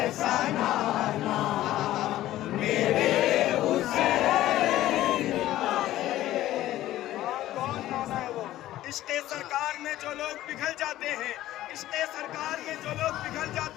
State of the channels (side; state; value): right; quieter; 14.5 dB